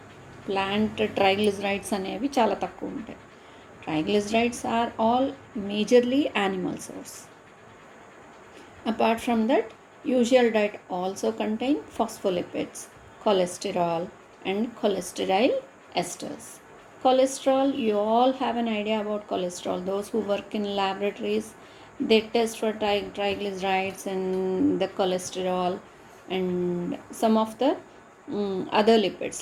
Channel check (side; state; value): both; identical; correlation 1.00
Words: Plant triglycerides anevi chala takku untayi. Triglycerides are all majorly animal source. Apart from that, usual diet also contain phospholipids, cholesterol and cholesterol esters. Cholesterol, you all have an idea about cholesterol. Those who work in laboratories, they test for triglycerides and the cholesterol and some of the other lipids